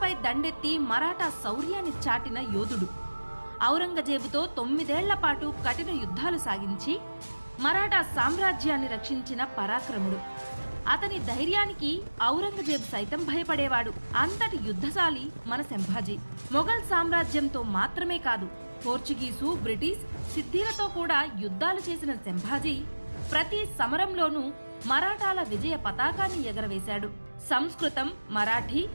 దండెత్తి మరాఠా శౌర్యాన్ని చాటిన యోధుడు. ఔరంగజేబుతో 9 ఏళ్ల పాటు కఠిన యుద్ధాలు సాగించి మరాఠా సామ్రాజ్యాన్ని రక్షించిన పరాక్రముడు. అతని ధైర్యానికి ఔరంగజేబు సైతం భయపడేవాడు. అంతటి యుద్ధశాలి మన సంభాజీ. మొఘల్ సామ్రాజ్యంతో మాత్రమే కాదు, పోర్చుగీసు, బ్రిటిష్, సిద్ధిలతో కూడా యుద్ధాలు చేసిన సంభాజీ ప్రతి సమరంలోనూ మరాఠాల విజయ పతాకాన్ని ఎగరవేశాడు. సంస్కృతం, మరాఠీ,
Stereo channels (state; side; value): inverted; both; correlation -1.00